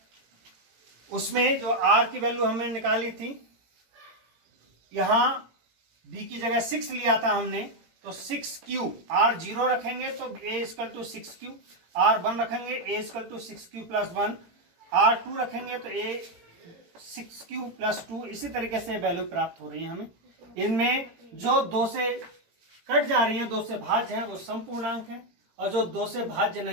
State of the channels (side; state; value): left; late; 18 ms